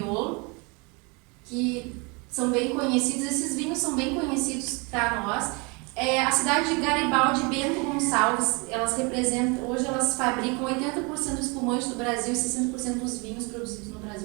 que são bem conhecidos, esses vinhos são bem conhecidos para nós. A cidade de Garibaldi e Bento Gonçalves, hoje elas fabricam 80% do espumante do Brasil e 60% dos vinhos produzidos no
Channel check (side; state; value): left; quieter; 30.1 dB